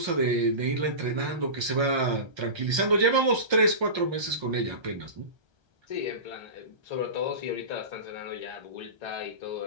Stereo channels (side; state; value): left; late; 1.3 ms